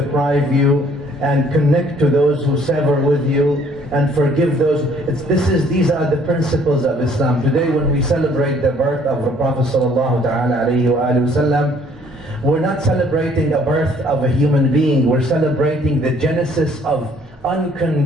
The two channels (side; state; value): both; normal; correlation 0.60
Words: you, and connect to those who sever with you, and forgive those. These are the principles of Islam. Today, when we celebrate the birth of the Prophet sallallahu ta'ala alayhi wa sallam, we're not celebrating the birth of a human being, we're celebrating the genesis of